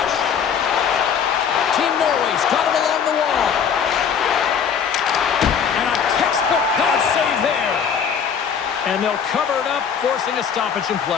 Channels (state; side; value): quieter; right; 7.2 dB